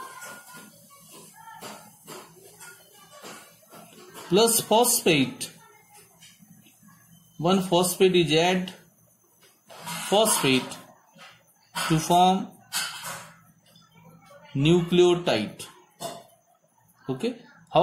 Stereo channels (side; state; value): both; identical; correlation 1.00